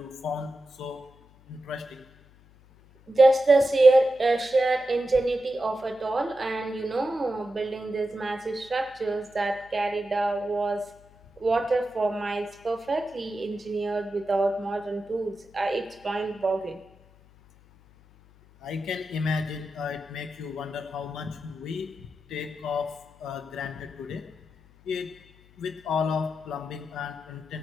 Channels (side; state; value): left; noise; hum, 27 dB below the sound